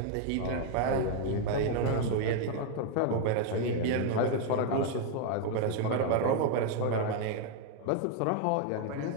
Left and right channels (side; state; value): both; different; correlation 0.01